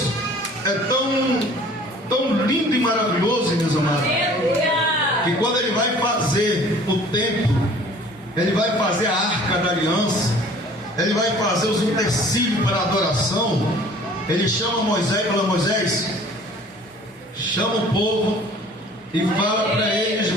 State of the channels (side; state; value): both; normal; correlation 0.50